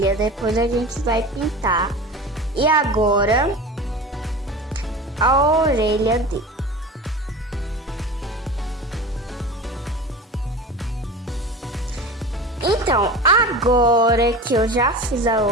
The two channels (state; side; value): normal; both; correlation 0.33